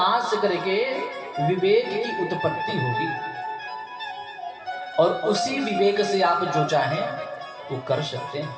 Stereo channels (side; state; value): both; identical; correlation 1.00